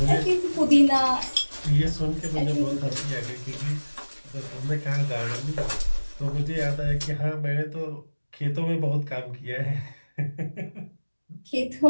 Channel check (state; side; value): inverted; both; correlation -1.00